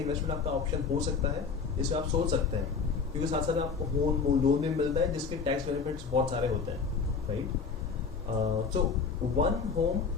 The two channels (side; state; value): right; quieter; 5.4 dB